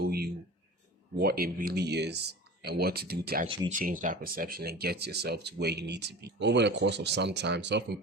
you what it really is and what to do to actually change that perception and get yourself to where you need to be. Over the course of some time, self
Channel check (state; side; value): normal; both; correlation 0.36